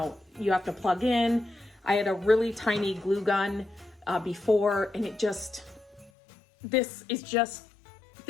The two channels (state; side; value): drops out; right; at 6.1 s